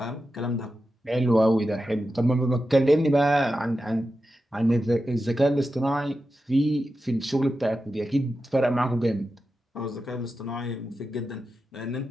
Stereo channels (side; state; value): both; normal; correlation 0.91